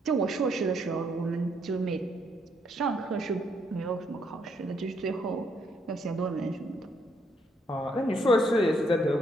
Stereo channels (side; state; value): both; normal; correlation 0.72